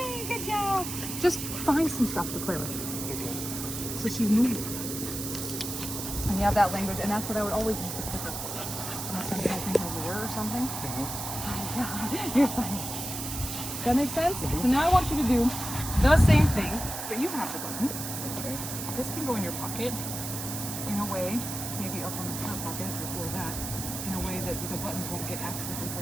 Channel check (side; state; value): right; noise; hiss, 6 dB below the sound